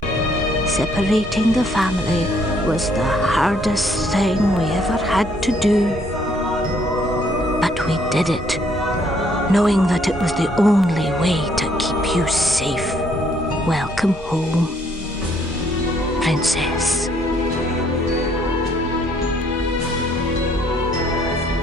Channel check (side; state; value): both; normal; correlation 0.66